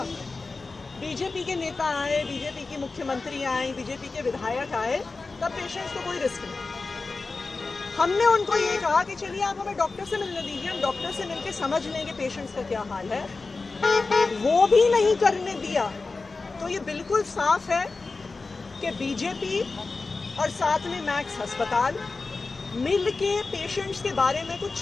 बीजेपी के नेता आए, बीजेपी की मुख्यमंत्री आए, बीजेपी के विधायक आए, तब पेशेंट्स को कोई रिस्क नहीं। हमने उनको ये कहा कि चलिए आप हमें डॉक्टर से मिलने दीजिए, हम डॉक्टर से मिलके समझ लें कि पेशेंट्स का क्या हाल है। वो भी नहीं करने दिया। तो ये बिल्कुल साफ है कि बीजेपी और साथ में मैक्स अस्पताल मिल के पेशेंट्स के बारे में कुछ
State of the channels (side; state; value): right; quieter; 3.9 dB